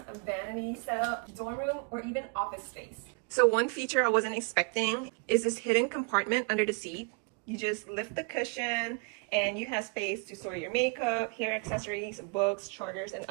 vanity setup, dorm room, or even office space. So one feature I wasn't expecting is this hidden compartment under the seat. You just lift the cushion and you have space to store your makeup, hair accessories, books, chargers, and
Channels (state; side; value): quieter; left; 33.9 dB